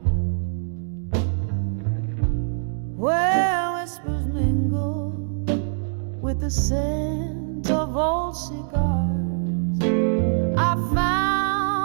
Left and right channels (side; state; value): left; silent; digital silence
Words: where whispers mingle with the scent of old cigars, I